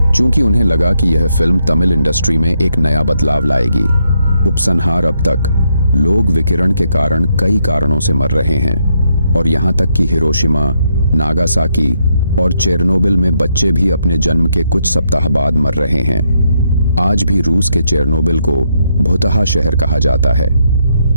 क्योंकि उन्हें लगा कि यह फिल्म तमिल इंडस्ट्री में एक नया बदलाव लाएगी। उपसंहार, अब तक लोग विकिरण के कारण कई कारणों से मर रहे हैं और यहाँ तक कि हिरोशिमा, नागासाकी और चेरनोबिल में बच्चे भी अपने जन्म के कुछ सप्ताह बाद मर रहे हैं। आज भी रूस के चेरनोबिल को भूतहा शहर कहा जाता है।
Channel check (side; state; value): both; inverted; correlation -0.78